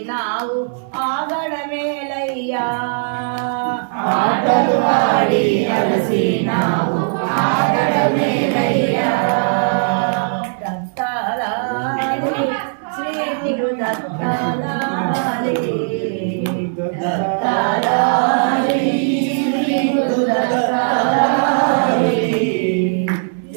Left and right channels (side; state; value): left; silent; digital silence